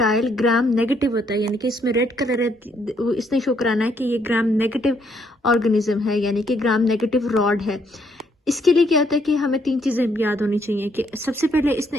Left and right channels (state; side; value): normal; both; correlation 0.71